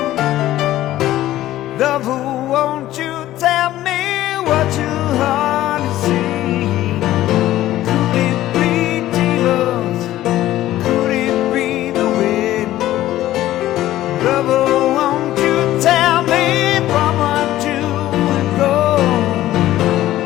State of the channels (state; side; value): quieter; right; 14.4 dB